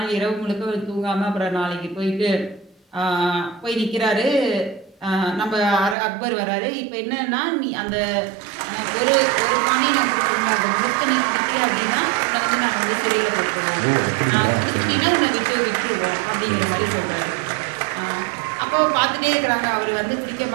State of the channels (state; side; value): drops out; left; at 6.0 s